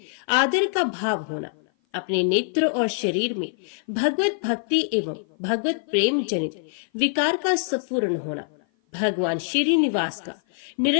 आदर का भाव होना, अपने नेत्र और शरीर में भगवत भक्ति एवं भगवत प्रेम जनित विकार का स्फुरण होना, भगवान श्रीनिवास का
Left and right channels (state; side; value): silent; right; 55 dB below the other